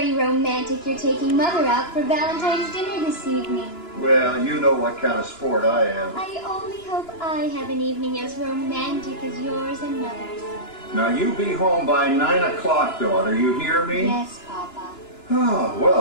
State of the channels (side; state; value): right; late; 2.9 ms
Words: romantic you're taking Mother out for Valentine's dinner this evening. Well, you know what kind of sport I am. I only hope I have an evening as romantic as yours and Mother's. Now, you be home by 9 o'clock, daughter. You hear me? Yes, Papa. Oh,